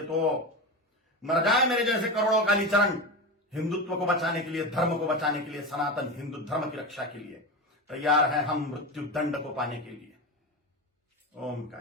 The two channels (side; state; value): both; normal; correlation 0.22